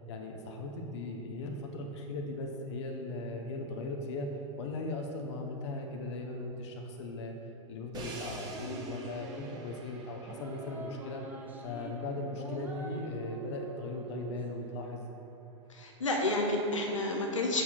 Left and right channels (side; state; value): both; normal; correlation -0.01